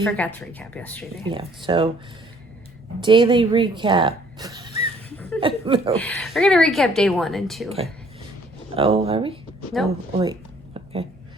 forgot to recap yesterday. Yeah, so daily recap. I don't know. We're going to recap day 1 and 2. Okay. Oh, are we? Nope. Oh, wait. Okay.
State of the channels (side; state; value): both; normal; correlation 0.60